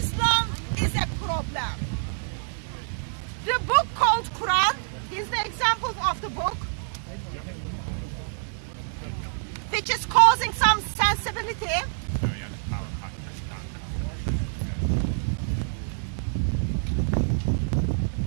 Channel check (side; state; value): left; silent; digital silence